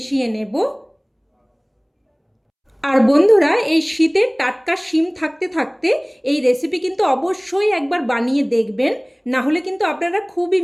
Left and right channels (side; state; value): both; identical; correlation 1.00